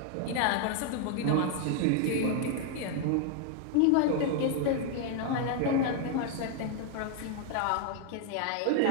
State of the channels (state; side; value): different; both; correlation 0.01